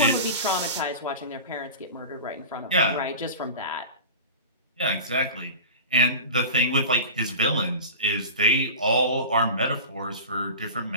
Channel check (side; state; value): both; inverted; correlation -0.32